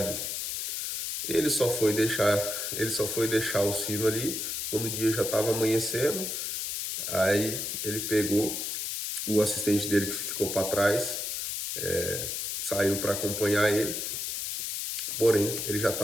Ele só foi deixar o sino ali quando o dia já estava amanhecendo. Aí ele pegou o assistente dele que ficou para trás, saiu para acompanhar ele, porém ele já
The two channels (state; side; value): noise; left; hiss, 3 dB below the sound